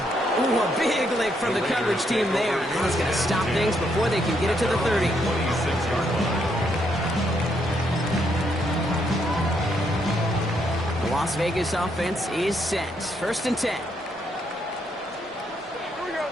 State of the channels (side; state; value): both; normal; correlation 0.75